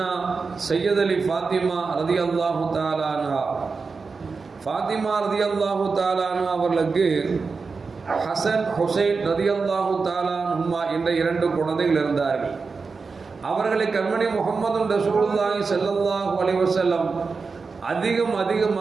அலி ஃபாத்திமா ரலியல்லாஹு தஆலா அன்ஹா, ஃபாத்திமா ரலியல்லாஹு தஆலா அன்ஹா அவர்களுக்கு ஹசன் ஹுசைன் ரலியல்லாஹு தஆலா அன்ஹுமா என்ற இரண்டு குழந்தைகள் இருந்தார்கள். அவர்களை கண்மணி முஹம்மது ரசூலுல்லாஹி ஸல்லல்லாஹு அலைஹி வஸல்லம்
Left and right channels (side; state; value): left; quieter; 4.6 dB